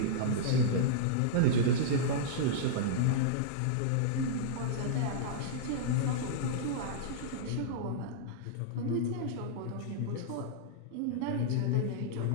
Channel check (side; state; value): both; different; correlation -0.03